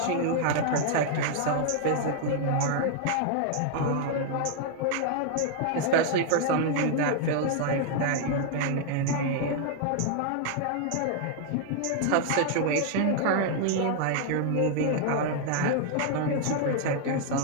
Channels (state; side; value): different; both; correlation 0.00